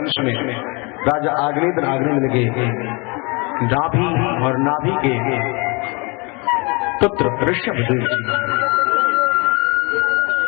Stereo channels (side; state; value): right; quieter; 29.3 dB